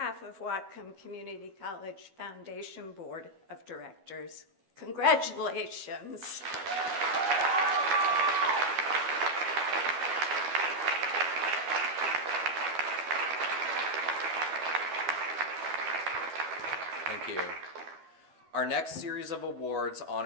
of Whatcom Community College Foundation Board of Directors, congratulations. Thank you. Our next series of awards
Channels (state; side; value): late; left; 12 ms